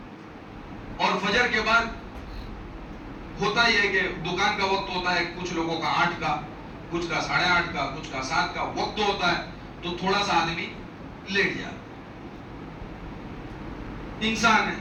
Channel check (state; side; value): identical; both; correlation 1.00